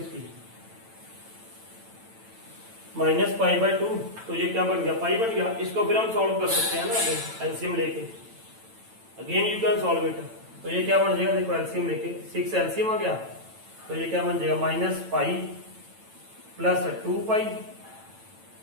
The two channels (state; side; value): late; left; 9.0 ms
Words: -π/2, तो ये क्या बन गया पाई बन गया। इसको फिर हम सॉल्व कर सकते हैं ना एलसीएम लेके, again you can solve it. तो ये क्या बन जाएगा देखो एलसीएम लेके, 6 एलसीएम आ गया, तो ये क्या बन जाएगा -π+2π,